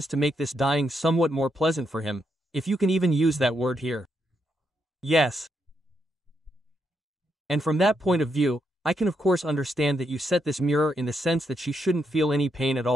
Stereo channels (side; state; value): both; normal; correlation 0.80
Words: to make this dying somewhat more pleasant for him, if you can even use that word here. Yes. And from that point of view, I can of course understand that you set this mirror in the sense that she shouldn't feel any pain at